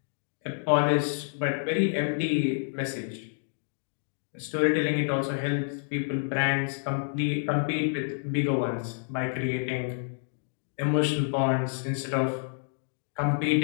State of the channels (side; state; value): right; silent; digital silence